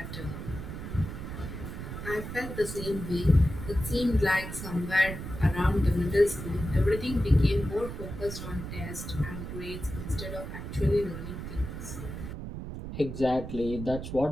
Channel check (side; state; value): right; noise; rumble, 8 dB below the sound